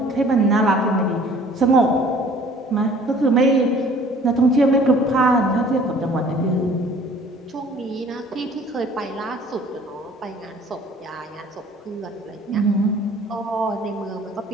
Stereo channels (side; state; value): both; normal; correlation 0.52